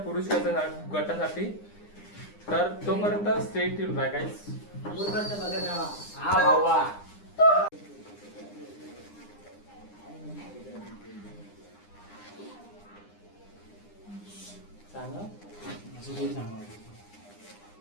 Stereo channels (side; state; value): right; late; 9.8 ms